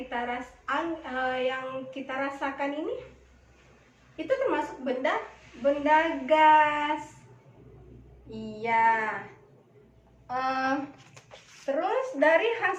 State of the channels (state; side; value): identical; both; correlation 1.00